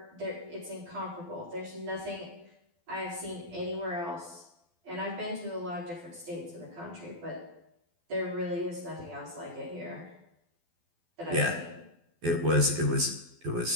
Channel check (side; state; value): left; late; 12 ms